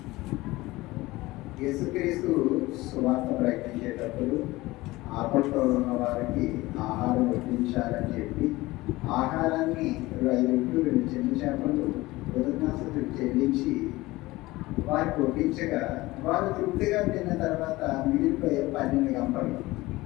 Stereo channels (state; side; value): quieter; right; 19.6 dB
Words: యేసుక్రీస్తు సువార్త ప్రకటించేటప్పుడు ఆపట్లో ఉన్న వారికి ఆహారం వడ్డించాలని చెప్పి ఆహారాన్ని 5 రొట్టెలు 2 చిన్న చేపలు కృతజ్ఞతాస్తుతులు చెల్లించి వారికి వడ్డించగా వారు తృప్తిగా తిన్న తర్వాత మిగిలిపోయే 12 గంటలు.